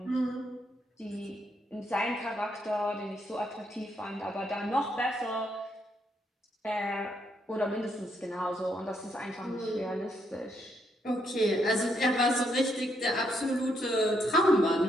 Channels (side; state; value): both; normal; correlation 0.76